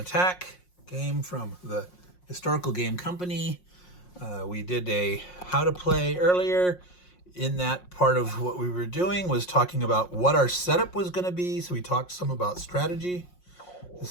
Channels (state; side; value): late; right; 5.6 ms